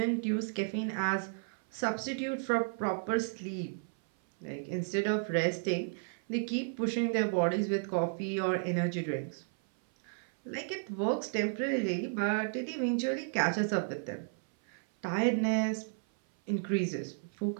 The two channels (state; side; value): silent; left; 56 dB below the other